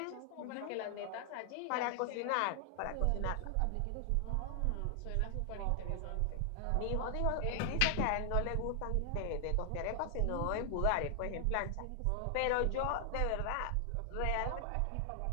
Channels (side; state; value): both; different; correlation 0.00